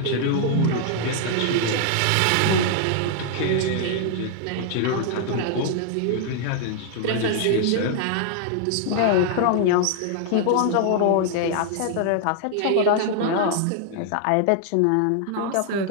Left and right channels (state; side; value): different; both; correlation 0.00